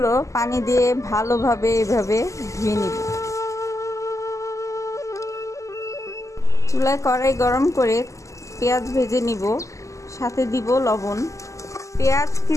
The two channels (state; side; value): late; right; 0.16 ms